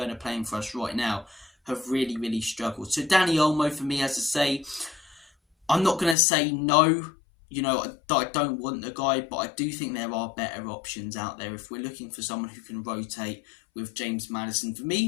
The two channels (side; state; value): right; drops out; at 6.2 s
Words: playing for us right now, have really, really struggled. So Dani Olmo, for me, as I say, I'm not going to say no, you know, I don't want the guy, but I do think there are better options out there if we're looking for someone who can rotate with James Maddison. For